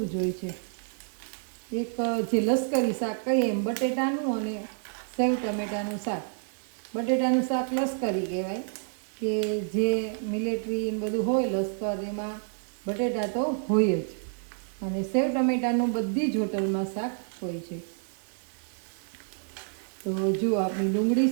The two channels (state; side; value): silent; left; digital silence